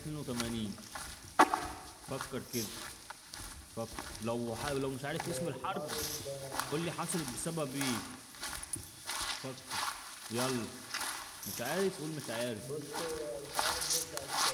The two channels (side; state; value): both; identical; correlation 1.00